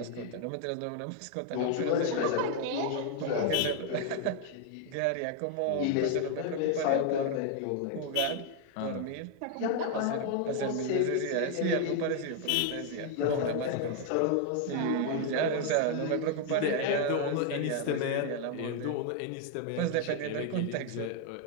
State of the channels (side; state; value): both; different; correlation 0.01